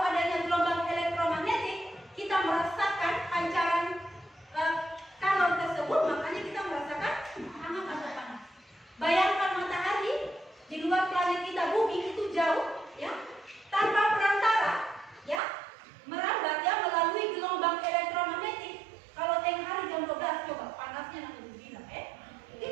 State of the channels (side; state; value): left; drops out; at 15.4 s